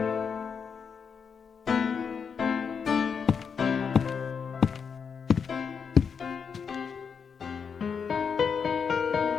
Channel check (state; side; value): quieter; right; 6.3 dB